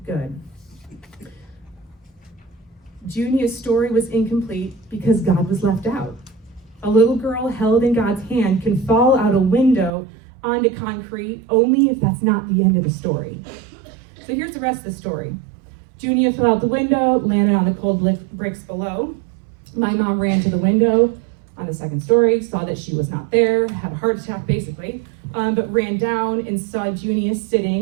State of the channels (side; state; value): left; drops out; at 9.9 s